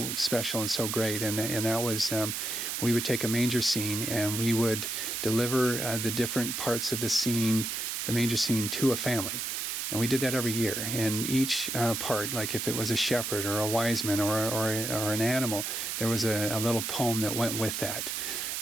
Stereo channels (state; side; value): noise; right; hiss, 3 dB below the sound